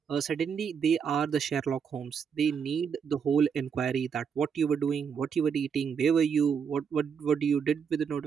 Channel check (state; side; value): quieter; left; 6.8 dB